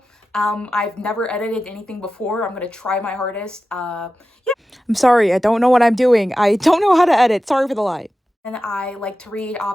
I've never edited anything before. I'm gonna try my hardest. Yeah. I'm sorry, I don't know what I'm doing. I don't know how to edit. Sorry for the lie. And I like to read,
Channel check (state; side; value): normal; both; correlation 0.93